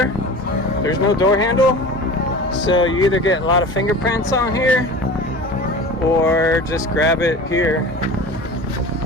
There's no door handle, so you either get a lot of fingerprints on here or just grab it here.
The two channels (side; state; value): both; normal; correlation 0.35